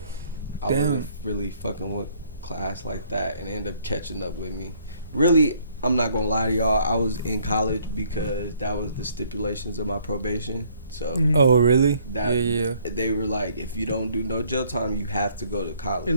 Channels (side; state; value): both; inverted; correlation -0.63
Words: I wasn't really fucking with class like that, and it ended up catching up with me. Really, I'm not gonna lie to y'all. I was in college because that was the stipulations of my probation. So oh really? Yeah. They were like, if you don't do no jail time, you have to go to college. At